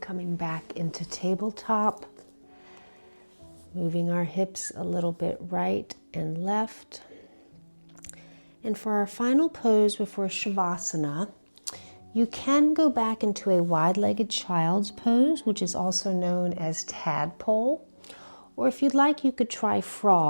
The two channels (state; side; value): inverted; both; correlation -1.00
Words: coming back into tabletop, moving our hips a little bit right and left. And for our final pose before Shavasana, you can go back into a wide-legged child's pose, which is also known as tadpole. Or if you'd like, you could try